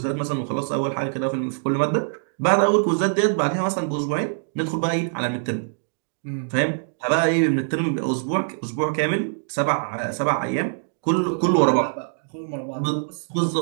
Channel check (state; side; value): silent; left; digital silence